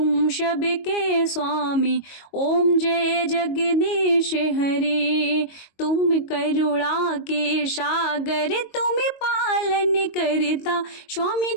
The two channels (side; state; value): right; late; 22 ms